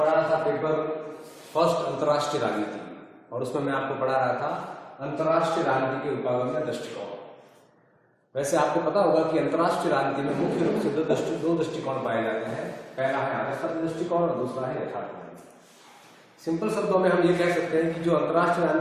रहा था पेपर फर्स्ट अंतर्राष्ट्रीय राजनीति, और उसमें मैं आपको पढ़ा रहा था अंतर्राष्ट्रीय राजनीति के उपागम्य दृष्टिकोण। वैसे आपको पता होगा कि अंतर्राष्ट्रीय राजनीति में मुख्य रूप से दो दृष्टिकोण पाए जाते हैं। पहला है आदर्शवादी दृष्टिकोण और दूसरा है यथार्थवादी। सिंपल शब्दों में हम ये कह सकते हैं कि जो अंतर्राष्ट्रीय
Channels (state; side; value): identical; both; correlation 1.00